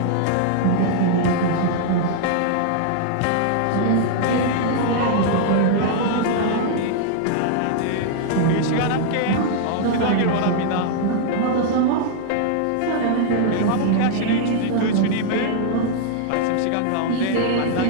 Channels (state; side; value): different; both; correlation -0.01